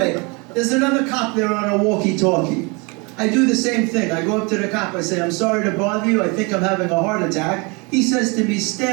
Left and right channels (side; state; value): left; quieter; 29.4 dB